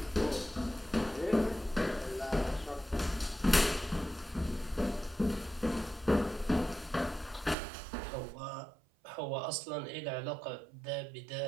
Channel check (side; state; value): left; drops out; at 7.6 s